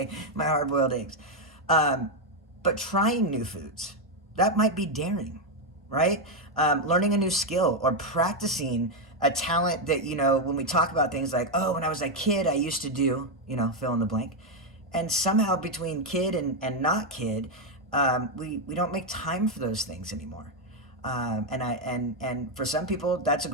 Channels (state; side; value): normal; both; correlation 0.04